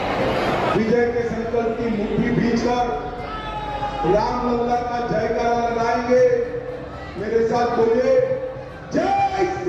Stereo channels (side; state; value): both; identical; correlation 1.00